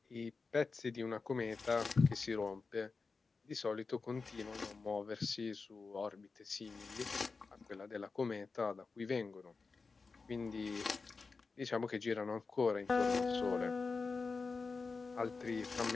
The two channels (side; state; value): right; quieter; 4.4 dB